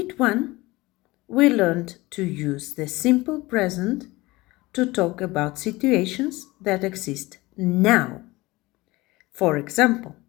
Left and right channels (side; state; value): right; quieter; 20.8 dB